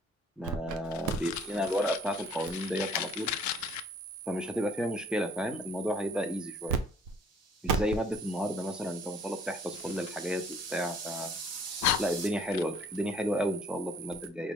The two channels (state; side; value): normal; both; correlation 0.57